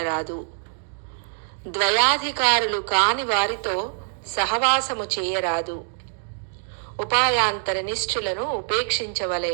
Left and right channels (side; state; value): left; silent; digital silence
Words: ద్వయాధికారులు కాని వారితో సహవాసము చేయరాదు. ఉపాయాంతర నిష్ఠులను